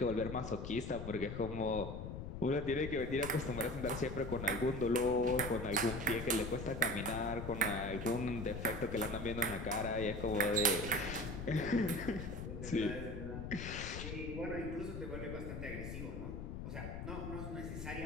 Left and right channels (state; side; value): noise; left; rumble, 6 dB below the sound